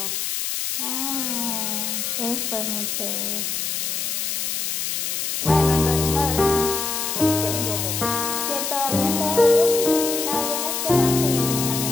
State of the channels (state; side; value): noise; left; hiss, 1 dB below the sound